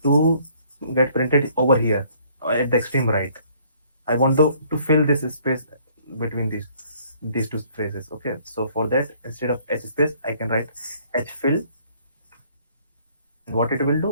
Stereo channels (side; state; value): both; inverted; correlation -0.61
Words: to get printed over here at the extreme right. I want to fill this space between these two phrases. Okay, so for that, instead of h space, I can write h fill. And what it will